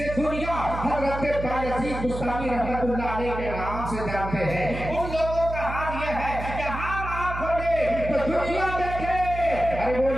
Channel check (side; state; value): right; noise; hum, 7 dB below the sound